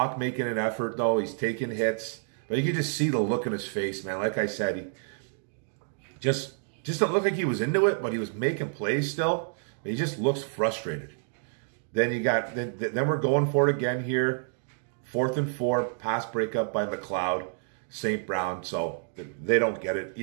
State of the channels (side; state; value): left; silent; digital silence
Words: making an effort, though. He's taking hits. But you can just see the look in his face, man. Like I said, he just don't look like he was into it, but he was making plays still. But he just looks frustrated. Then then we're going for it again here. 4th and 4. Pass breakup by McLeod. St. Brown, so they don't get it.